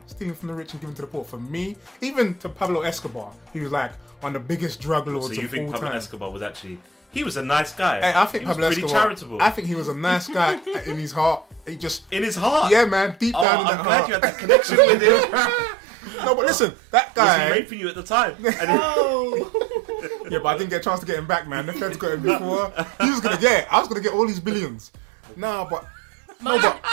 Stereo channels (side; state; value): left; drops out; at 13.5 s